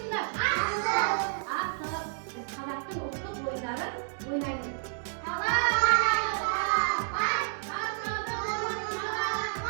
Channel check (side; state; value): left; silent; digital silence